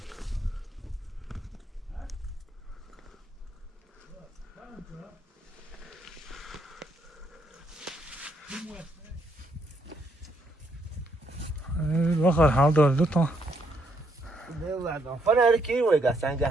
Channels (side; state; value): both; normal; correlation 0.74